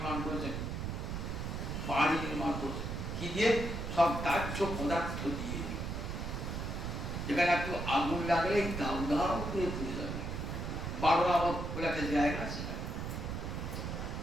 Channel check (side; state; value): right; noise; rumble, 4 dB below the sound